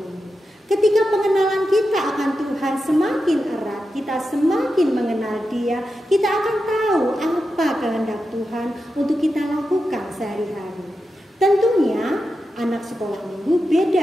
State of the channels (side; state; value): both; normal; correlation 0.89